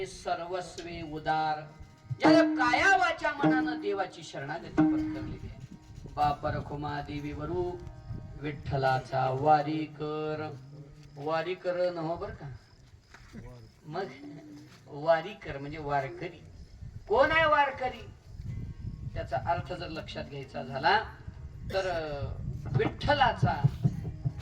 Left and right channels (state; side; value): identical; both; correlation 1.00